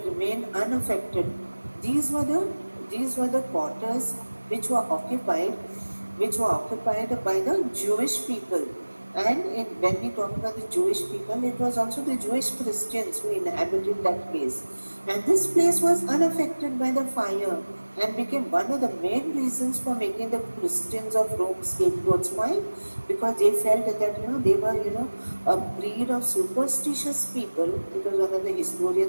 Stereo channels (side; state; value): both; inverted; correlation -1.00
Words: remained unaffected, these were the quarters which were occupied by the Jewish people. And when we talk about the Jewish people, it was also the Jewish Christians who inhabited that place. And this place was unaffected by the fire and became one of the main reasons for making the Christians of Rome scapegoats. Why? Because they felt that they were a breed of superstitious people, because one of the